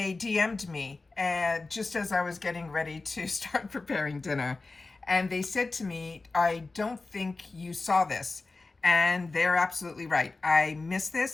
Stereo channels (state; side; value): quieter; right; 3.6 dB